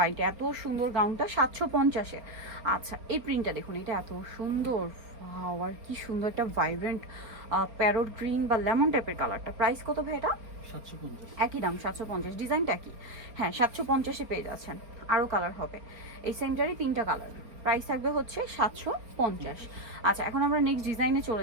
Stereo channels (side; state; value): left; late; 4.3 ms